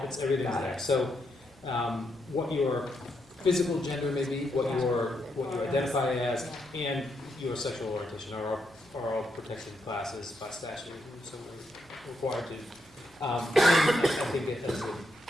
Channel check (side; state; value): both; normal; correlation 0.80